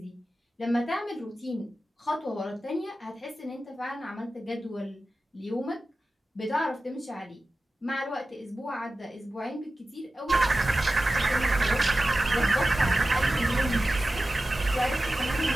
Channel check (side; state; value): both; normal; correlation 0.95